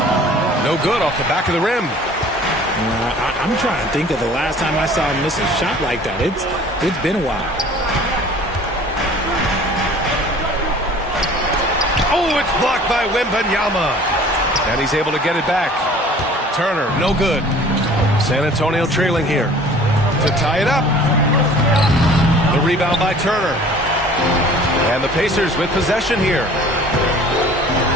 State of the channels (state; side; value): normal; both; correlation 0.49